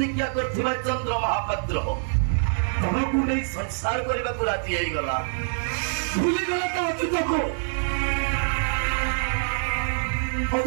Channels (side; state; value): left; silent; digital silence